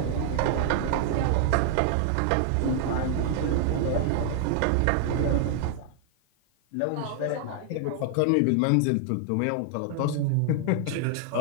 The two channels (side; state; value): both; different; correlation 0.00